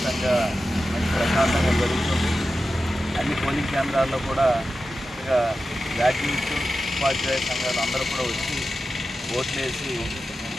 మంచి ప్రశాంతంగా జరుగుతుంది. అన్ని పోలింగ్ కేంద్రాల్లో కూడా చక్కగా గ్రాడ్యుయేట్స్, ఉపాధ్యాయ సంఘాలు అందరూ కూడా వచ్చి ఓట్లేసి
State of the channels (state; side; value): normal; both; correlation 0.92